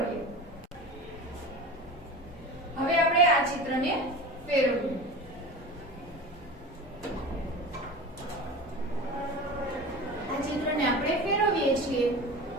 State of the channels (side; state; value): both; normal; correlation 0.32